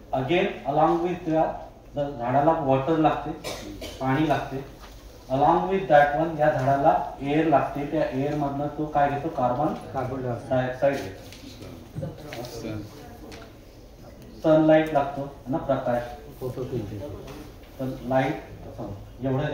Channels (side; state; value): both; identical; correlation 1.00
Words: अगेन अलॉंग विथ झाडाला वॉटर लागते, पाणी लागते. अलॉंग विथ दॅट वन या झाडाला एअर लागते. त्या एअर मधनं तो काय घेतो, कार्बन डायऑक्साईड घेतो. सनलाईट लागतो ना, प्रकाश, तर लाईट एवढं